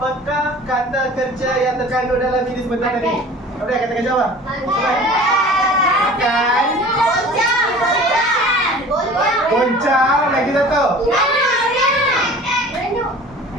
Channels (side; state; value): both; normal; correlation 0.43